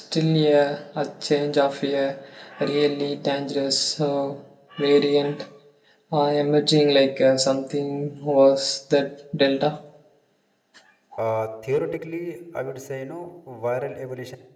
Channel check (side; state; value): both; identical; correlation 1.00